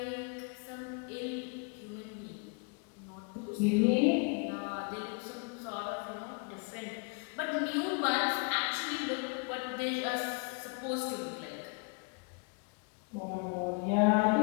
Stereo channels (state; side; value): quieter; right; 33.7 dB